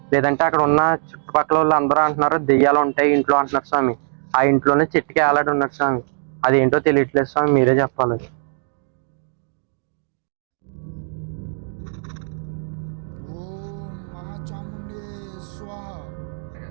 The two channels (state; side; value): silent; left; 65 dB below the other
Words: లేదంటే అక్కడ ఉన్న చుట్టుపక్కల వాళ్ళు అందరూ అంటున్నారు దెయ్యాలు ఉంటాయి ఇంట్లో అంటున్నారు స్వామి. ఆ ఇంట్లోనే చెట్టుకి వేలాడి ఉన్నాడు స్వామి. అదేంటో తెలియట్లేదు స్వామి, మీరే చెప్పాలి.